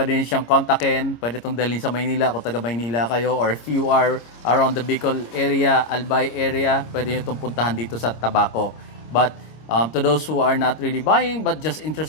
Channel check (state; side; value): late; right; 26 ms